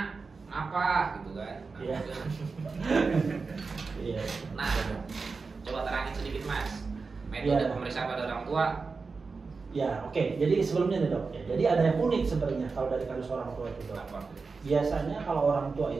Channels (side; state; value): left; quieter; 4.5 dB